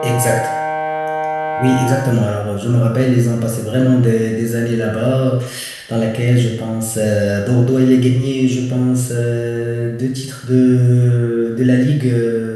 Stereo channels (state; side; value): identical; both; correlation 1.00